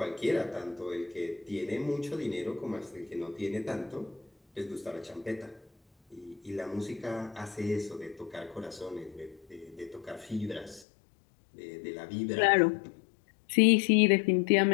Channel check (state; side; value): drops out; right; at 10.9 s